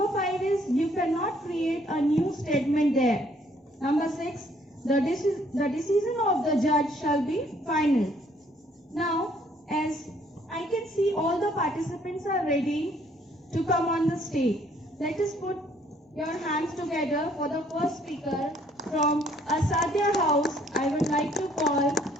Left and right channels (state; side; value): normal; both; correlation 0.64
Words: 5 is, you cannot create a new statement there. Number 6, the decision of the judge shall be final. Now, as I can see all the participants are ready to come on the stage. Let us put your hands together for the first speaker from Asadya House. I would like to call